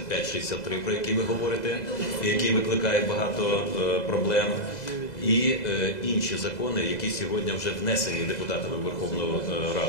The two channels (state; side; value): late; right; 2.0 ms